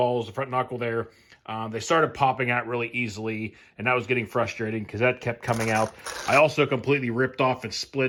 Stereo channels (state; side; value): identical; both; correlation 1.00